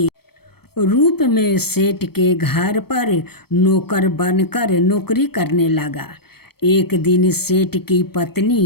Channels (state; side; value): late; right; 0.96 ms